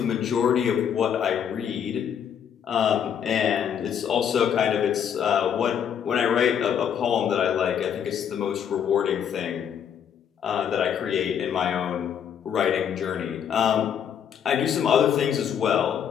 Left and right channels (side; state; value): right; quieter; 8.5 dB